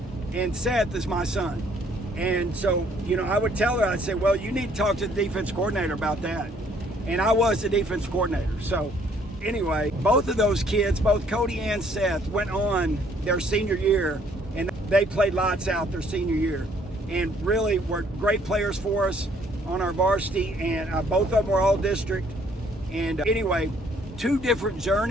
and Seth is my son. And so, I would tell her, I'd say, "Well, you need to talk to the defense coordinator about that." And I was the defense coordinator. So anyway, both of those kids, both Cody and Seth, went on their senior year, and they played lights out their senior year and really were great players for us on our varsity. And both of them were all district. And anyway, two different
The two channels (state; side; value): normal; both; correlation 0.63